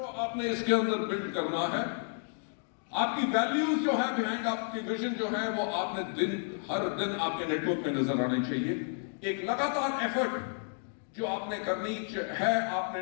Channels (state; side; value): silent; right; 57 dB below the other